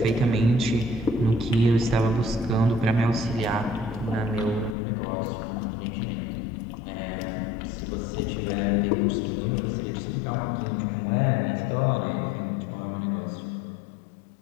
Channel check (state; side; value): drops out; right; at 4.8 s